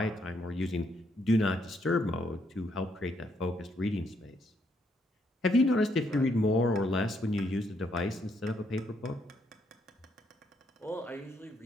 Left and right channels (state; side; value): normal; both; correlation 0.74